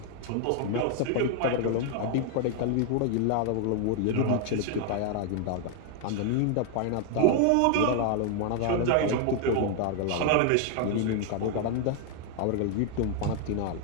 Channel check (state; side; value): different; both; correlation 0.00